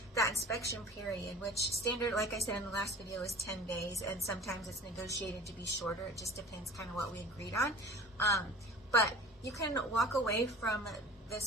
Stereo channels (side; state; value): both; normal; correlation 0.42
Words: that inspection period, which standard, like I said in the last video, is 10 days, and sometimes it's negotiated to be shorter. It just depends kind of what we agreed on. But you can walk away from